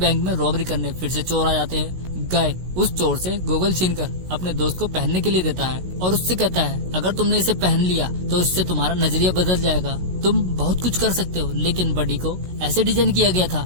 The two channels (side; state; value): left; late; 16 ms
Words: में रॉबरी करने फिर से चोर आ जाते हैं। गाय उस चोर से गोगल छीनकर अपने दोस्त को पहनने के लिए देता है और उससे कहता है, अगर तुमने इसे पहन लिया तो इससे तुम्हारा नजरिया बदल जाएगा। तुम बहुत कुछ कर सकते हो। लेकिन बडी को ऐसे डिजाइन किया गया था